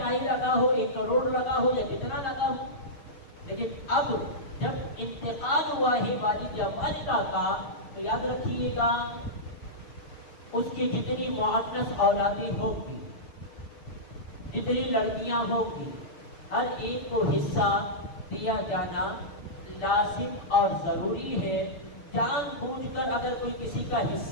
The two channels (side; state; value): right; late; 6.1 ms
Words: لگا ہو، 1 کروڑ لگا ہو یا جتنا لگا ہو۔ لیکن اب جب انتقال ہوا ہے والد یا والدہ کا، تو یاد رکھیے گا اس کی جتنی مؤنث اولادیں ہوگی، جتنی لڑکیاں ہوگی، ہر ایک کو حصہ دیا جانا لازم اور ضروری ہے۔ جان بوجھ کر اگر کوئی کسی کا